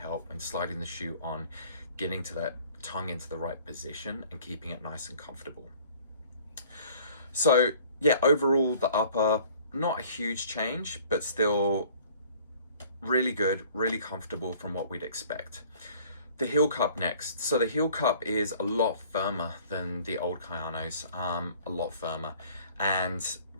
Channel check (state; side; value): inverted; both; correlation -0.52